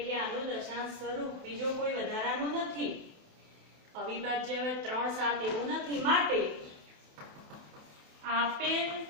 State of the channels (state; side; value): late; left; 27 ms